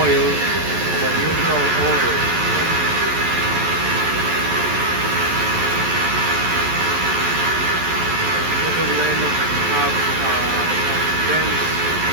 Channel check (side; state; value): left; late; 11 ms